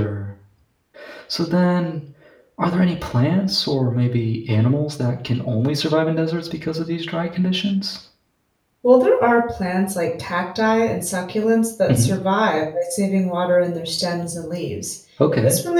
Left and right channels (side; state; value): both; identical; correlation 1.00